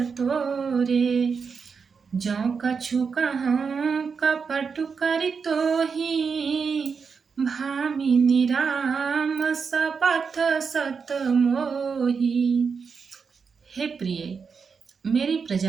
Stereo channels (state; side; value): quieter; left; 5.6 dB